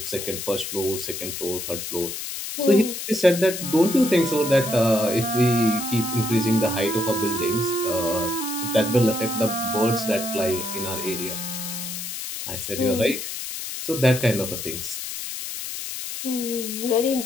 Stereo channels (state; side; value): noise; left; hiss, 6 dB below the sound